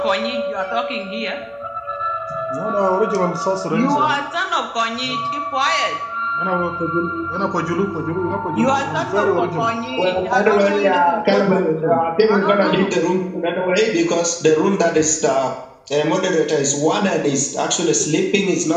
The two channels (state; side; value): identical; both; correlation 1.00